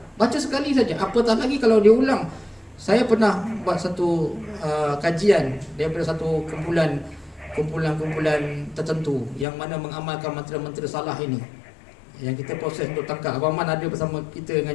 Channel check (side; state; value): right; drops out; at 9.5 s